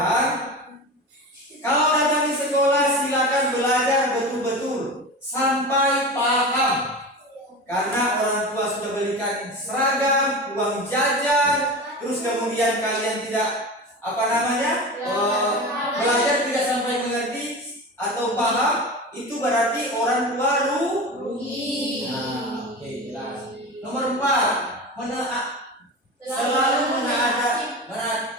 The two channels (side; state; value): both; normal; correlation 0.29